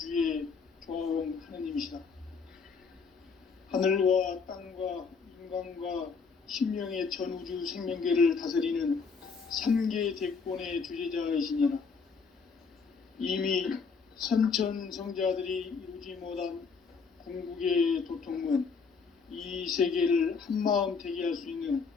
조화원 하느님이시다. 하늘과 땅과 인간과 심령의 전우주 생명계를 다스리는 3계 대권의 주제자이시니라. 이미 선천성자들이 이루지 못한 궁극의 도통문, 이 세계를 한마음 되게 할 수 있는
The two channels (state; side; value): quieter; right; 5.2 dB